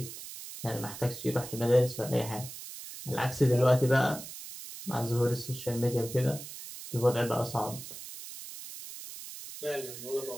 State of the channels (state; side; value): noise; right; hiss, 12 dB below the sound